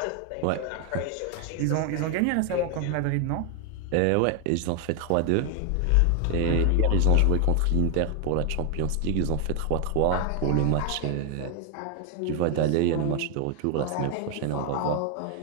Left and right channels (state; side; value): different; both; correlation 0.00